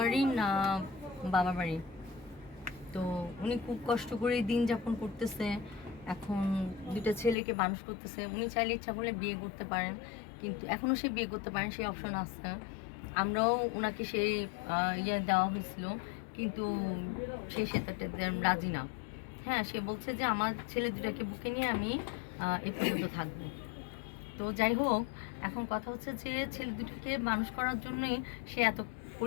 না বাবার বাড়ি। তো উনি খুব কষ্ট করে দিন যাপন করতেছে, এখন 2টা ছেলেকে মানুষ করতেছে। উনি চাইলে ইচ্ছা করলে বিয়ে করতে পারেন, কিন্তু এখনও সে বিয়ে করতে পারেন, সেই অপশন আছে। আমরাও ওনাকে সেই ইয়ে দেওয়া হয়েছিল, কিন্তু সে সেটাতে রাজি না। হ্যাঁ, সে বলছে যে আমার ছেলে 2টাকে বুকে নিয়ে আমি এ পর্যন্ত থাকবো। তো যাই হোক, এখন কথা হচ্ছে যে ছেলে 2টাকে মানুষ করার জন্যই সে এত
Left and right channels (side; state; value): right; drops out; at 7.4 s